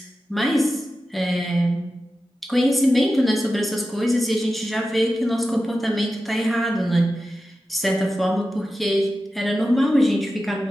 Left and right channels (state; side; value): normal; both; correlation 0.92